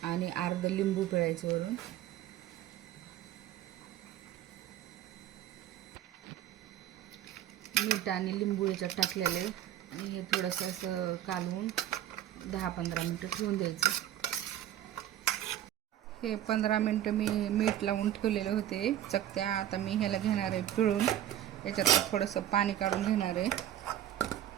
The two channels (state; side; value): quieter; left; 11.9 dB